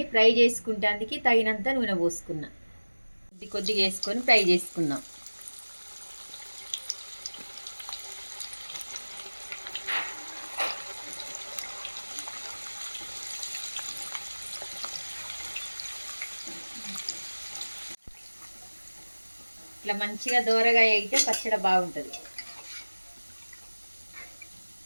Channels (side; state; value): both; inverted; correlation -1.00